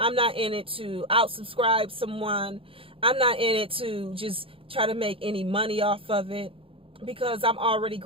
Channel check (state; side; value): late; left; 0.26 ms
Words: not in it to outsubscribe someone. I'm not in it to just try to make any money off of it, because I'm already